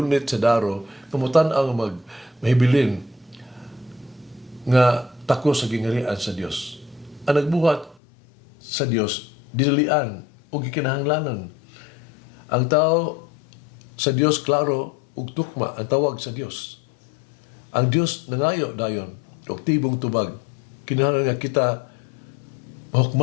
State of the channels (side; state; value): right; drops out; at 8.0 s